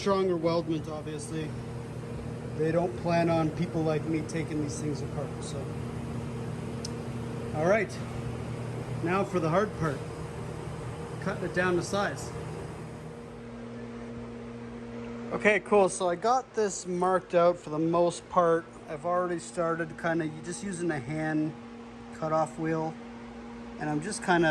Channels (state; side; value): identical; both; correlation 1.00